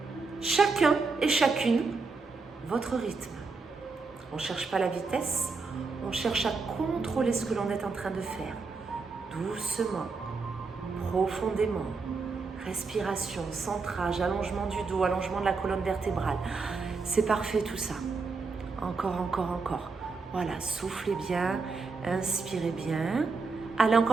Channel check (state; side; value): quieter; left; 4.3 dB